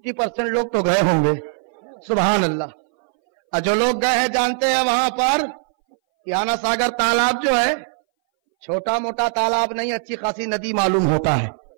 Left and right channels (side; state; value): left; silent; 62 dB below the other